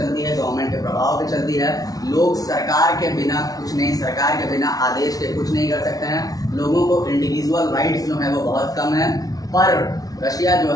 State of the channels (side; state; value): right; late; 0.18 ms